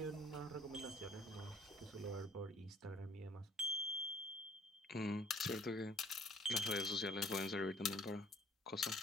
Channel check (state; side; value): normal; both; correlation 0.56